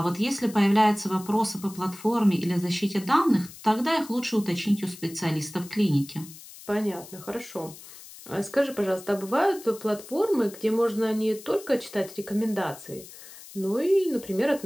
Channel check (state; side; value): noise; left; hiss, 17 dB below the sound